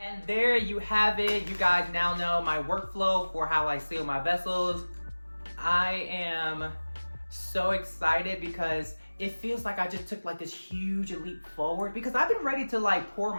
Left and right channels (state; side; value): inverted; both; correlation -1.00